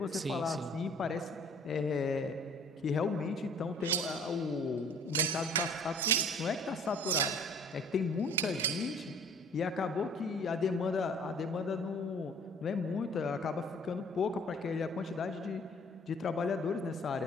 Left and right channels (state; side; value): normal; both; correlation 0.53